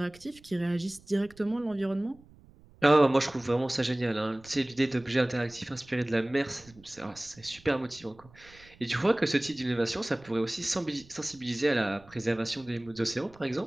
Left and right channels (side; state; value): right; noise; rumble, 25 dB below the sound